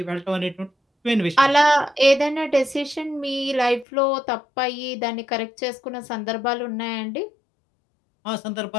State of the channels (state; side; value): drops out; right; at 3.9 s